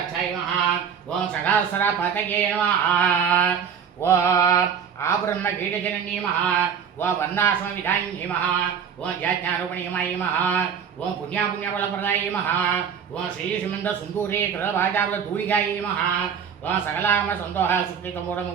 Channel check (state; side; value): quieter; left; 7.4 dB